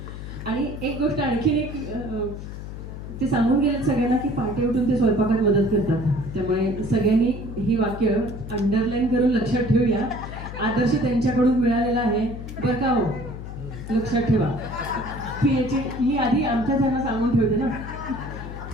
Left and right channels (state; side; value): noise; left; hum, 9 dB below the sound